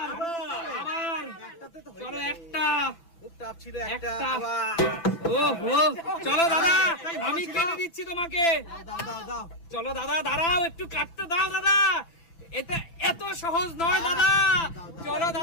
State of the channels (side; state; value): right; late; 6.0 ms